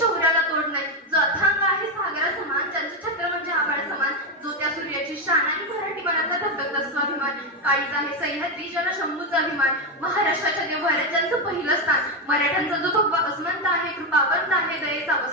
तोड नाही, जो अथांग आहे सागरा समान, ज्यांचं छत्र म्हणजे आभाळ समान, जो त्या सूर्याची शान आणि मराठी मनाचा धगधगता स्वाभिमान, काळीज आहे सह्याद्री ज्याला शंभूचा अभिमान, महाराष्ट्राच्या देवघरात ज्यांचं पहिलं स्थान, मराठ्यांचा जो भगवा अस्मंत आहे, कृपावंत आहे, दयेचा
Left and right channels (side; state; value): both; normal; correlation 0.09